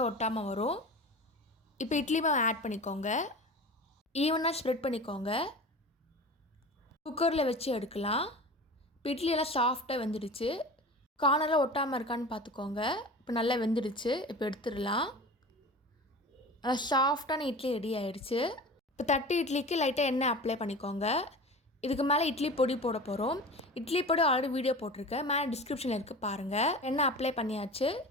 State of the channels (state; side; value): normal; both; correlation 0.34